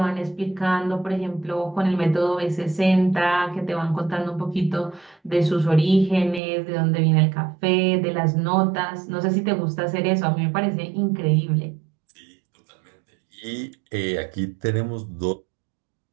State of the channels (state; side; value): drops out; left; at 6.4 s